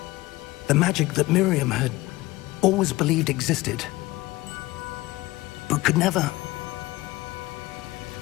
The magic that Miriam had always believed existed, but could never.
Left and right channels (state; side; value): quieter; right; 19.3 dB